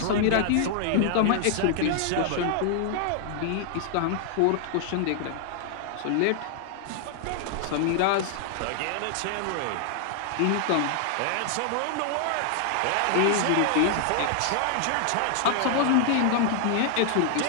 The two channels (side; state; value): both; different; correlation 0.00